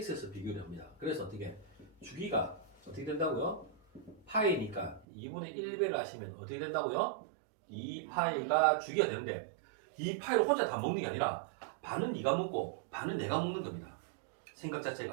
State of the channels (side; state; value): left; drops out; at 5.1 s